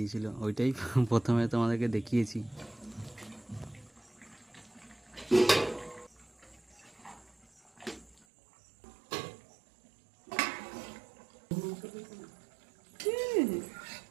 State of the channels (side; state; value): left; drops out; at 8.2 s